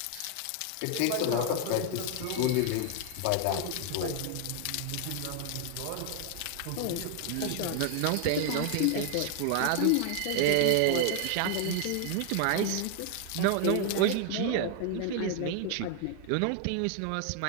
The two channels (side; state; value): both; different; correlation 0.00